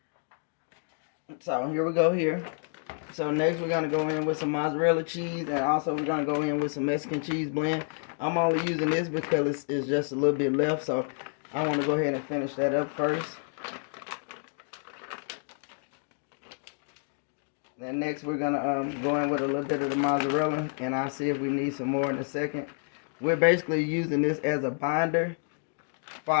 So here we go here. So next we're going to go in with some mozzarella cheese, and also we're going to go in with some Mexican cheese blend. I'm only using this because it's just a little bit left, so I want to go ahead and finish that up first. Then next we're going to go in with a little bit of the mozzarella, and I'll see if we need some more in a second. We're basically using this as a binder for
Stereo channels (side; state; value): right; silent; 58 dB below the other